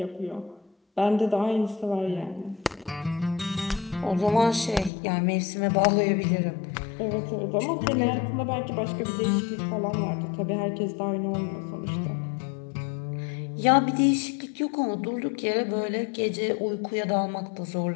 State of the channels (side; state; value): right; drops out; at 4.9 s